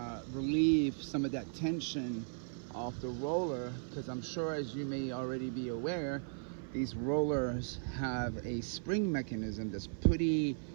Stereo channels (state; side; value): silent; left; 53 dB below the other